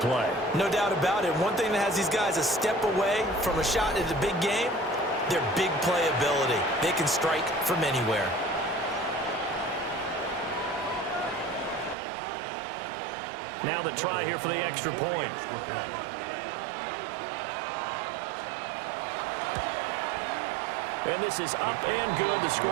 No doubt about it. One thing that has these guys a step away from a shot at the big game, their big play ability. They can strike from anywhere. Now the try here for the extra point. And this is up and good. The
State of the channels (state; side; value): drops out; left; at 12.0 s